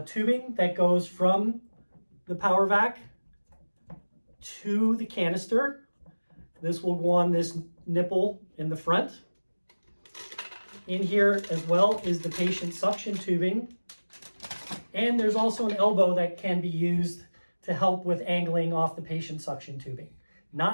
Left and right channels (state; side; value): inverted; both; correlation -1.00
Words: tubing that goes from the PowerVac to the canister. This will go on this nipple in the front. In here as well is the patient suction tubing. And there's also an elbow that can be used to help with angling off the patient suction tubing.